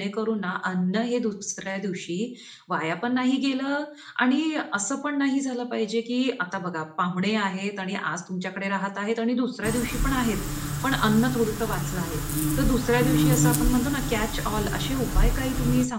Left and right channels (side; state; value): both; identical; correlation 1.00